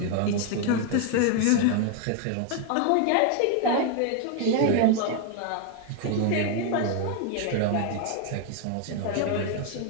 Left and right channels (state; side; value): different; both; correlation 0.01